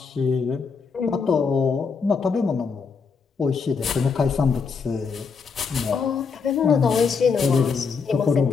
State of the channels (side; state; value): right; quieter; 5.4 dB